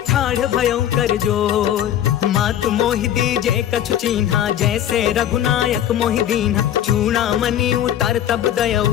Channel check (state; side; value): quieter; right; 11.0 dB